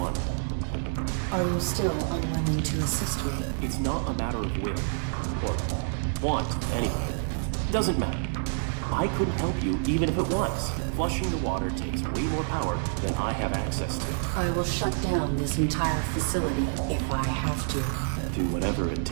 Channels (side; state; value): left; silent; 59 dB below the other